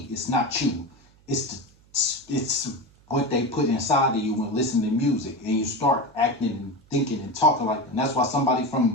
It's not you. It's what they put inside of you when listening to music, and you start acting and thinking and talking like that. And that's why somebody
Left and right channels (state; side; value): noise; right; hum, 29 dB below the sound